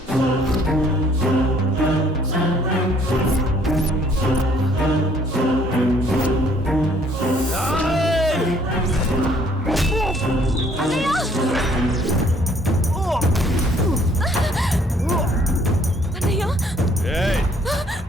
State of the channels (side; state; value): both; normal; correlation 0.62